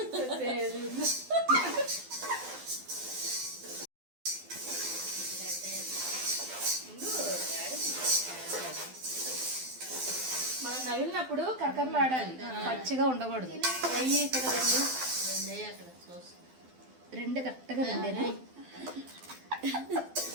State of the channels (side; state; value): left; late; 12 ms